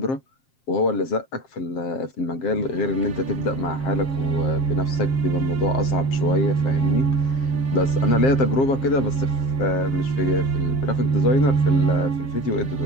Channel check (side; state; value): right; late; 7.5 ms